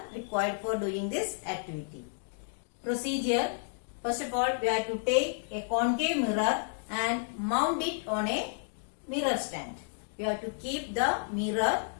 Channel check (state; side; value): silent; right; digital silence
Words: required for doing this activity. Procedure: first of all we have to take a concave mirror and mount it on a mirror stand. We have to keep the mirror